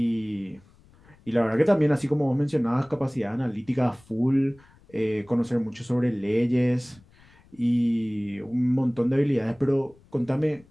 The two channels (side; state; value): left; noise; rumble, 28 dB below the sound